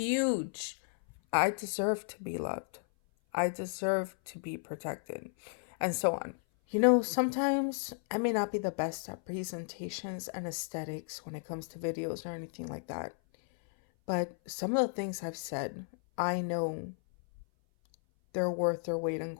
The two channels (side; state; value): right; silent; 55 dB below the other